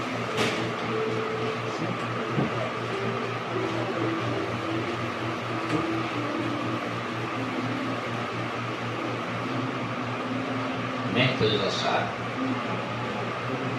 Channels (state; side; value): identical; both; correlation 1.00